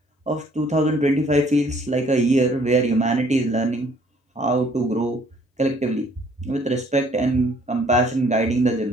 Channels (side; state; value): both; normal; correlation 0.60